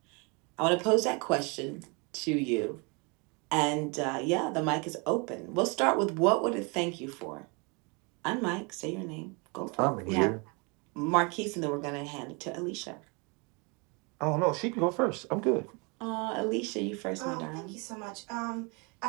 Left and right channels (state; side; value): quieter; left; 31.2 dB